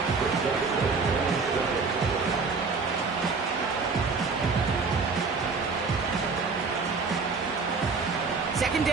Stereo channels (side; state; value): left; quieter; 4.6 dB